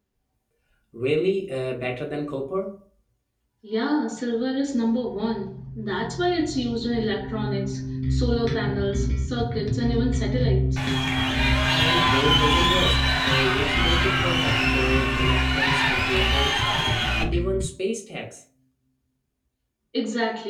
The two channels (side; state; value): both; identical; correlation 1.00